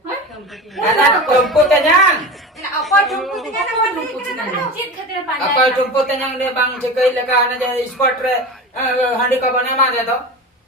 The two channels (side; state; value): both; normal; correlation 0.29